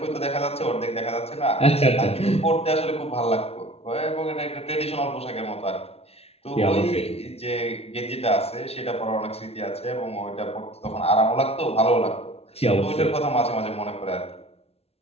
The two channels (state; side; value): late; right; 0.30 ms